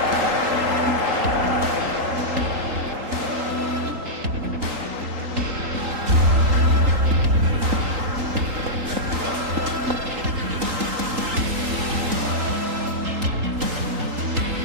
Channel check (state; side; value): late; left; 3.8 ms